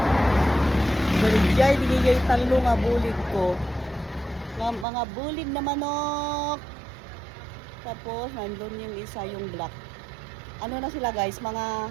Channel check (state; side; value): drops out; left; at 4.9 s